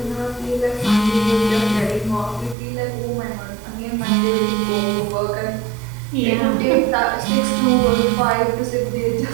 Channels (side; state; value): left; drops out; at 2.6 s